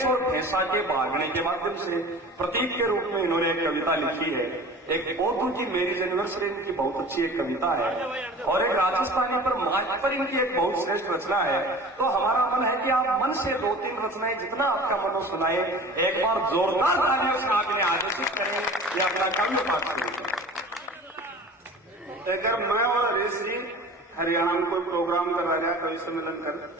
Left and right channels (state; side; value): normal; both; correlation 0.40